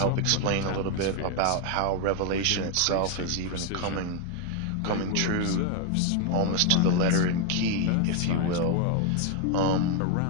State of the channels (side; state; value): both; different; correlation 0.01